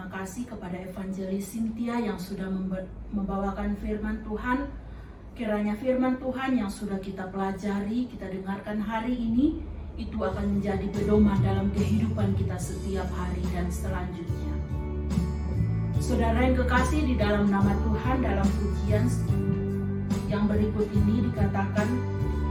kasih kepada Evangelis Cynthia yang sudah membawakan firman Tuhan. Kiranya firman Tuhan yang sudah kita pelajari, kita dengarkan hari ini, itu akan menjadi pedoman dalam kehidupan kita setiap hari dan selanjutnya. Saudara yang kekasih, di dalam nama Tuhan, dalam pujian yang berikut ini dikatakan,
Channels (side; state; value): both; identical; correlation 1.00